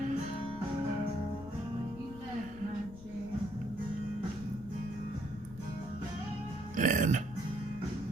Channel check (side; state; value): left; noise; rumble, 15 dB below the sound